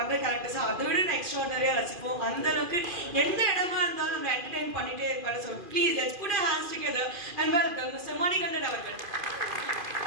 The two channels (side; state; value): left; late; 2.4 ms